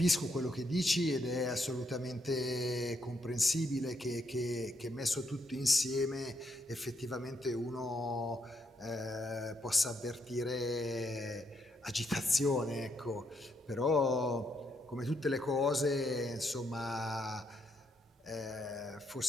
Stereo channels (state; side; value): normal; both; correlation 0.76